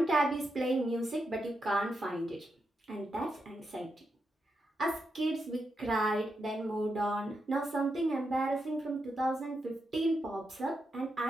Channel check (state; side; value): normal; both; correlation 0.85